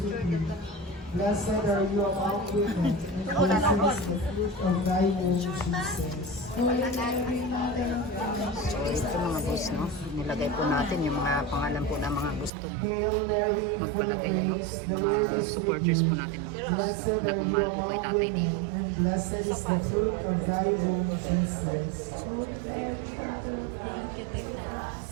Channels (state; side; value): drops out; left; at 12.5 s